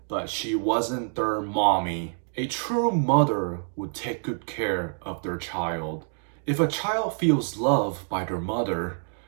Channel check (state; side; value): silent; left; 58 dB below the other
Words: but she wasn't their mommy. A true mother would take good care of their child. If a child feels loved by their mother,